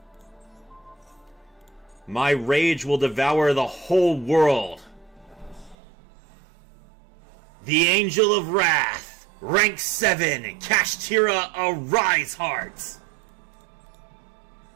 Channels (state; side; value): drops out; left; at 5.8 s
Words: My rage will devour the whole world. The Angel of Wrath, rank 7, Kashtira, Arise Heart.